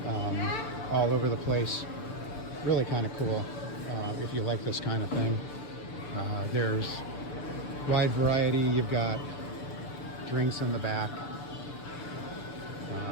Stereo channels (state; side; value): late; right; 6.8 ms